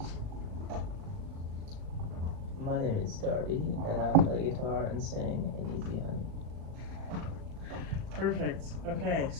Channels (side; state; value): left; late; 38 ms